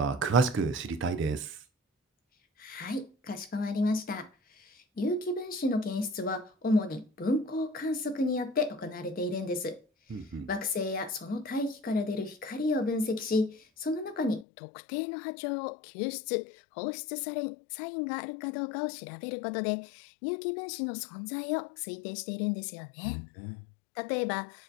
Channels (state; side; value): drops out; right; at 14.5 s